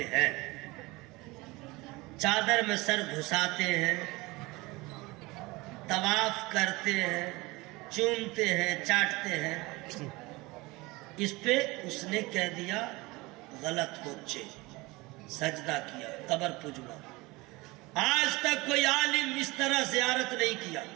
ہیں، چادر میں سر گھساتے ہیں، طواف کرتے ہیں، چومتے ہیں، چاٹتے ہیں۔ اس پہ اس نے کہہ دیا غلط بچے، سجدہ کیا، قبر پجوا۔ آج تک کوئی عالم اس طرح زیارت نہیں کیا،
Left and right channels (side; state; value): left; quieter; 22.7 dB